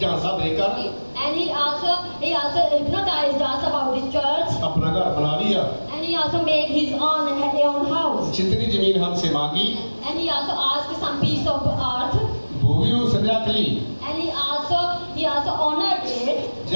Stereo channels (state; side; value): inverted; both; correlation -1.00